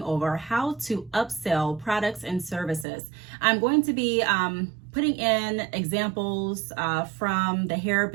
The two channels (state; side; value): drops out; left; at 2.9 s